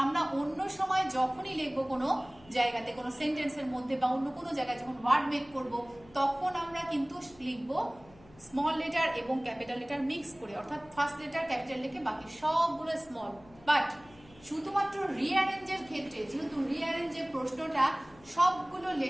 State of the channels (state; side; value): noise; left; hum, 24 dB below the sound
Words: আমরা অন্য সময় যখনই লিখবো কোনো জায়গাতে, কোনো সেন্টেন্সের মধ্যে বা অন্য কোনো জায়গায় যখন ওয়ার্ড মেক করব, তখন আমরা কিন্তু লিখবো স্মল লেটার এবং ক্যাপিটাল লেটার মিক্স করে, অর্থাৎ ফার্স্ট লেটার ক্যাপিটাল লিখে বাকি সবগুলো স্মল। বাট শুধুমাত্র রিঅ্যারেঞ্জের ক্ষেত্রে, যেহেতু রিঅ্যারেঞ্জের প্রশ্নটা সবগুলো